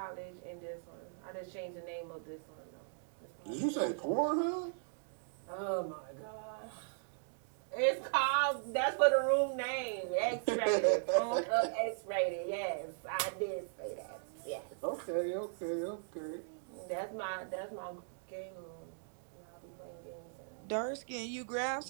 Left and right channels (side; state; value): left; silent; digital silence